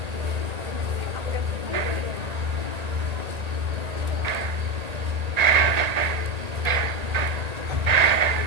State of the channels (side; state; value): left; late; 1.8 ms